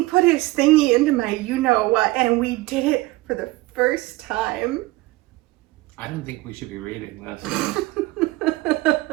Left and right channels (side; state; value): left; quieter; 20.1 dB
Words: put his thingy into my you-know-what and we did it for the first time. I don't think we should be reading this.